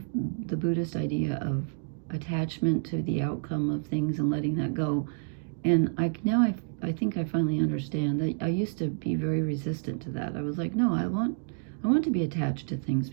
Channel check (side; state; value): left; silent; digital silence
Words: the Buddhist idea of attachment to the outcome of things and letting that go. And I think I finally understand that I used to be very resistant to that. I was like, no, I want to be attached to things